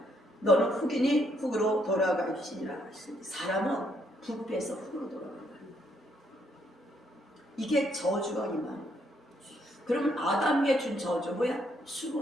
너는 흑이니 흑으로 돌아갈지니라. 사람은 부패해서 흑으로 돌아간다. 이게 저주가 임하는. 그러면 아담에게 준 저주 뭐야?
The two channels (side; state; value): both; normal; correlation 0.72